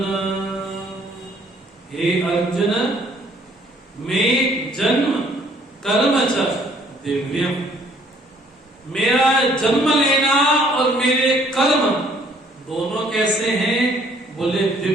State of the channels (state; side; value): normal; both; correlation 0.61